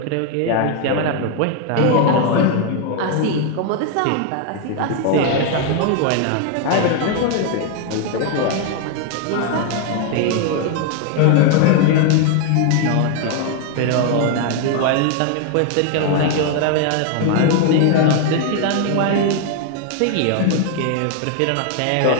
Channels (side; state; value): both; different; correlation 0.00